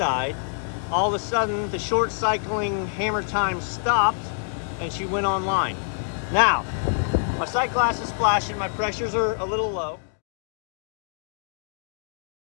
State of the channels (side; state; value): right; silent; digital silence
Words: all of a sudden the short cycling hammer time stopped and she went online. Now, my sight glass is flashing, my pressures are a little low.